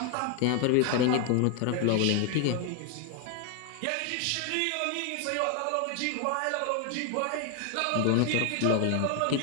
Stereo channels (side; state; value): both; different; correlation 0.01